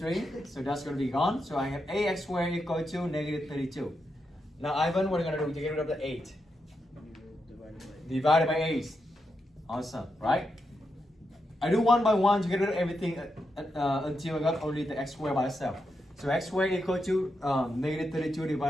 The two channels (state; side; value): normal; both; correlation 0.85